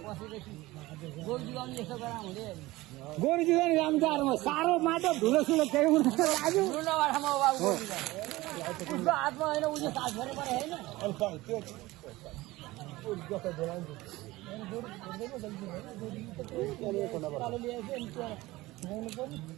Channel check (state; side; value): quieter; left; 19.2 dB